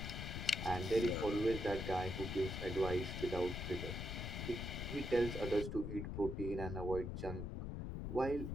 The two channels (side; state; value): left; noise; rumble, 4 dB below the sound